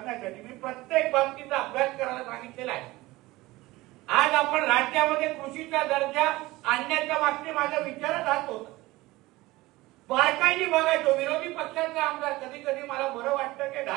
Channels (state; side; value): quieter; left; 19.5 dB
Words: मी प्रत्येक बाबतीचा अभ्यास करायला सांगितलेला आहे। आज आपण राज्यामध्ये कृषीचा दर्जा आणण्याच्या मागचे माझा विचारच हाच होता। बारकाईने बघायचो विरोधी पक्षाचा आमदार, कधी कधी मला बरं वाटतं की